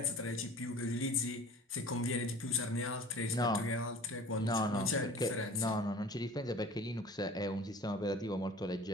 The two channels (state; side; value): normal; both; correlation 0.44